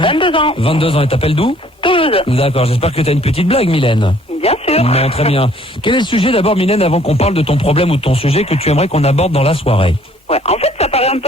ans. 22 ans, et t'appelles d'où? Toulouse. D'accord, j'espère que t'as une petite blague Mylène. Bien sûr. Non, très bien. Quel est le sujet d'abord Mylène, avant qu'on parle de ton problème ou de ton sujet que tu aimerais qu'on aborde dans la soirée? Ouais, en fait, ça paraît un peu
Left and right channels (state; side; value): normal; both; correlation 0.59